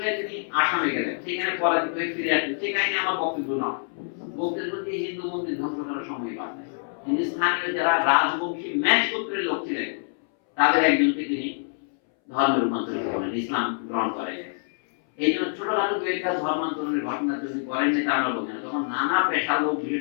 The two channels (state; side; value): silent; right; 61 dB below the other